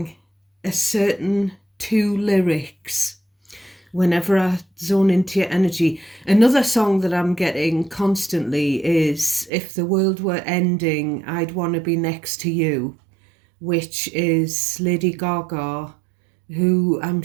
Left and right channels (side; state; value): left; drops out; at 9.5 s